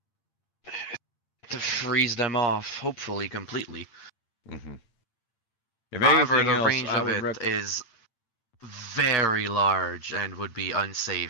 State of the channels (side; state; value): right; late; 8.7 ms